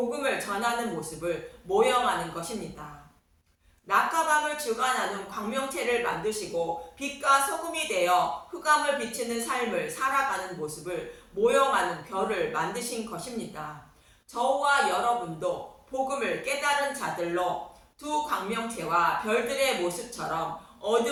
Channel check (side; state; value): both; identical; correlation 1.00